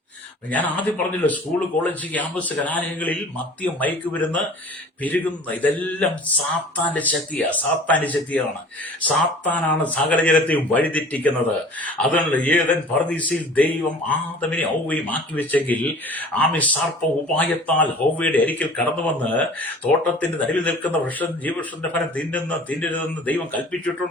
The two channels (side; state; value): both; normal; correlation 0.45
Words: ഞാൻ ആദ്യം പറഞ്ഞല്ലോ, സ്കൂൾ, കോളേജ്, ക്യാമ്പസ്, കലാലയങ്ങളിൽ മദ്യം, മയക്കുമരുന്ന് പെരുകുന്ന ഇതെല്ലാം സാത്താന്റെ ശക്തിയാണ്. സാത്താനാണ് സകല ജനത്തെയും വഴിതെറ്റിക്കുന്നത്. അതുകൊണ്ട് ഏദൻ പർദീസയിൽ ദൈവം ആദമിനെ ഹൗവയും മാറ്റിവെച്ചെങ്കിൽ ആമി സർപ്പ ഉപായത്താൽ ഹൗവയുടെ അരികിൽ കടന്നു വന്ന് തോട്ടത്തിന്റെ നടുവിൽ നിൽക്കുന്ന ജീവവൃക്ഷത്തിന്റെ ഫലം തിന്നരുതെന്ന് ദൈവം